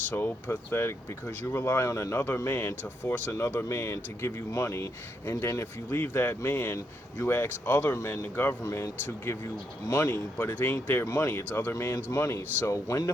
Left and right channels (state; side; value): normal; both; correlation 0.79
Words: pathetic because you rely on another man to force another man to give you money, and then if you leave that man, you ask other men, the government, to give you money, but it ain't their money, it's other man's money. So when the